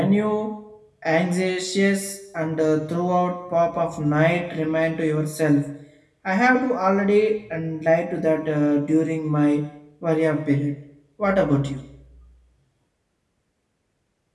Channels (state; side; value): identical; both; correlation 1.00